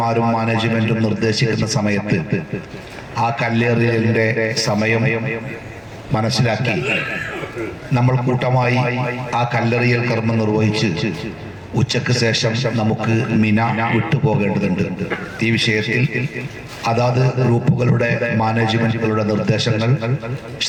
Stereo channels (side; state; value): both; identical; correlation 1.00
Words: മാനേജ്മെന്റും നിർദ്ദേശിക്കുന്ന സമയത്ത് ആ കല്ലെറിയലിന്റെ സമയം മനസ്സിലാക്കി നമ്മൾ കൂട്ടമായി ആ കല്ലെറിയൽ കർമ്മം നിർവഹിച്ച് ഉച്ചയ്ക്ക് ശേഷം നമുക്ക് മിന വിട്ടുപോകേണ്ടതുണ്ട്. ഈ വിഷയത്തിൽ അതാത് ഗ്രൂപ്പുകളുടെ മാനേജ്മെന്റുകളുടെ നിർദ്ദേശങ്ങൾ